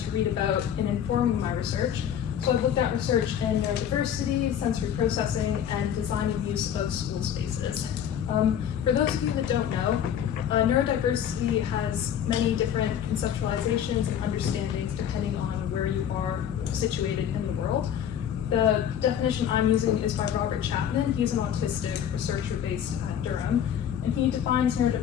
read about in informing my research. So I've looked at research in neurodiversity, sensory processing, and design and use of school spaces. For those of you that don't know, neurodiversity has many different conceptualizations and understandings depending on where you are situated in the world. The definition I'm using is by Robert Chapman. He's an autistic researcher based at Durham, and he defines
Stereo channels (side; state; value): right; quieter; 9.3 dB